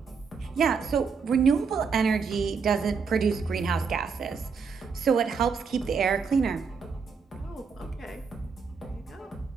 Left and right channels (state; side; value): quieter; left; 5.5 dB